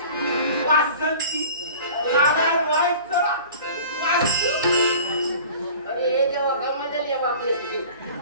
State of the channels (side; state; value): both; inverted; correlation -0.43